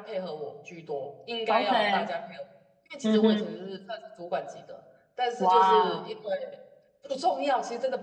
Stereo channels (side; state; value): both; identical; correlation 1.00